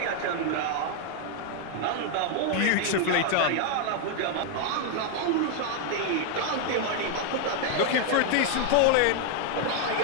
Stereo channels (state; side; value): different; both; correlation 0.00